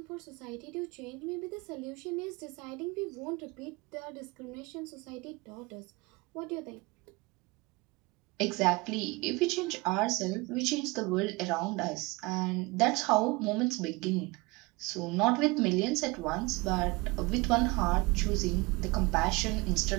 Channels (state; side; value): quieter; left; 24.6 dB